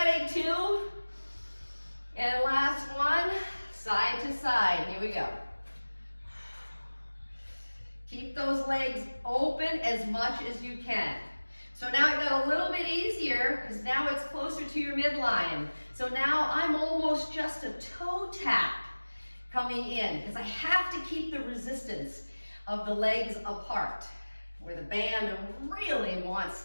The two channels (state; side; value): inverted; both; correlation -1.00